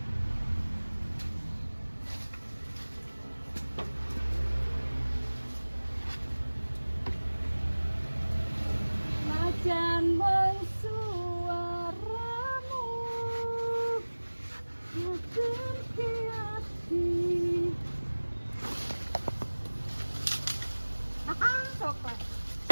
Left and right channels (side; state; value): both; inverted; correlation -1.00